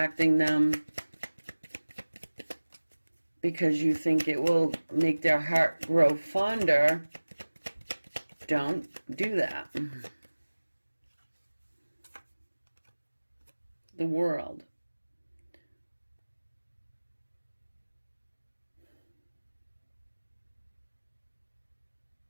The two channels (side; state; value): both; inverted; correlation -1.00